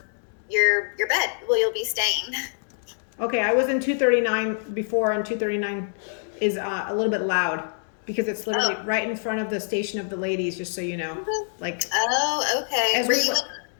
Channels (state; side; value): silent; right; digital silence